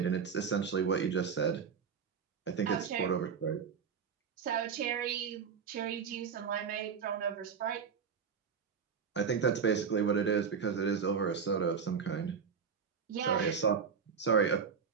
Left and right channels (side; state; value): left; quieter; 6.4 dB